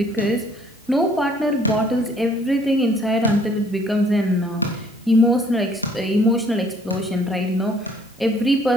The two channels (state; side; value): normal; both; correlation 0.60